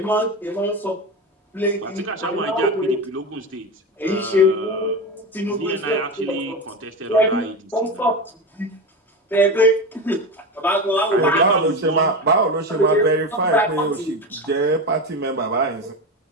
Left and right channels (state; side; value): normal; both; correlation 0.21